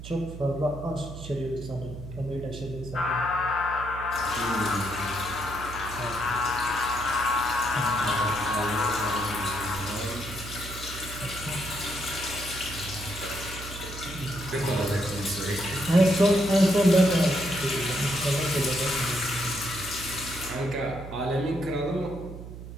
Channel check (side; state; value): right; noise; hum, 11 dB below the sound